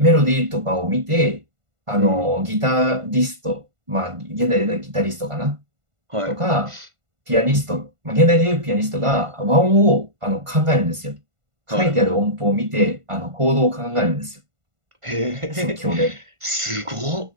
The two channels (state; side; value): late; left; 1.5 ms